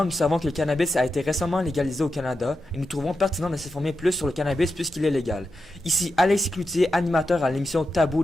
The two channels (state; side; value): noise; left; hum, 29 dB below the sound